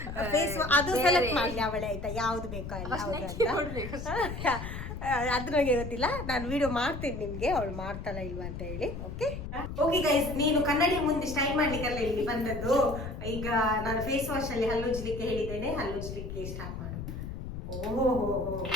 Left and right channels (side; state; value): left; noise; rumble, 7 dB below the sound